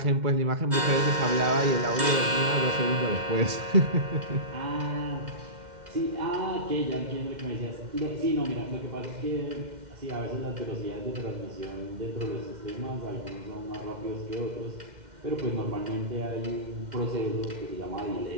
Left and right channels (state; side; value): late; left; 2.1 ms